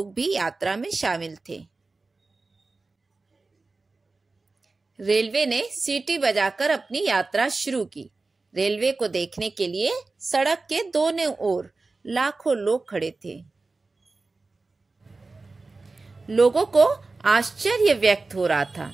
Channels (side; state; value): left; quieter; 3.7 dB